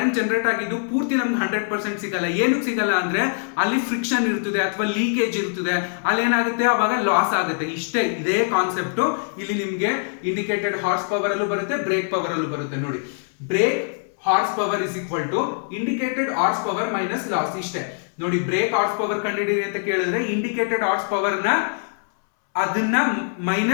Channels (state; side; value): silent; right; 63 dB below the other